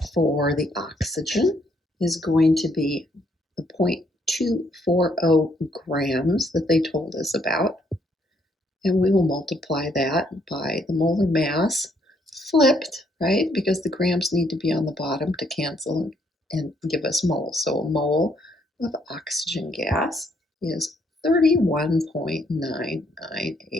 for the oxygen is going to be the 0.240 grams that they told us about. And we will multiply that by the molar mass flipped, right? Because the grams need to be on the bottom to cancel and give us moles. So a mole of oxygen gas is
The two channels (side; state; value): both; normal; correlation 0.71